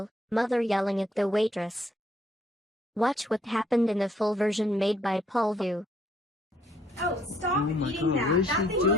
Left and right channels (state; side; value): normal; both; correlation 0.67